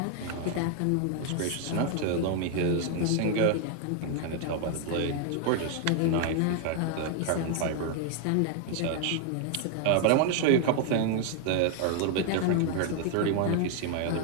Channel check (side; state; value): both; different; correlation 0.00